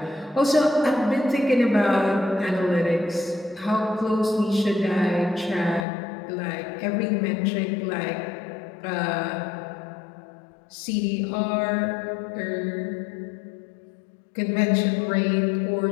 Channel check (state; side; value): drops out; right; at 5.9 s